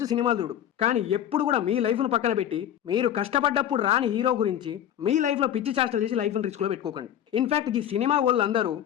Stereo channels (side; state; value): right; quieter; 10.6 dB